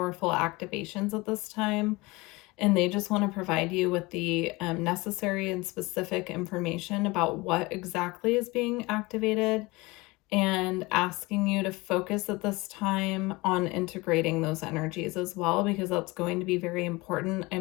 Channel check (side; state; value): right; quieter; 23.2 dB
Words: activations at this time. And they just want to provide you with the necessary and specific information about what exactly is being activated and asking you to focus at this time on integrating those energies as well, because that's going to be very important.